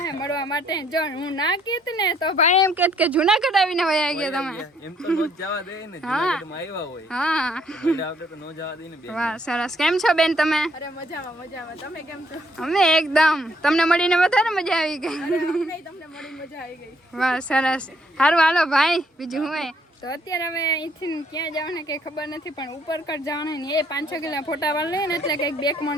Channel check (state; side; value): normal; both; correlation 0.67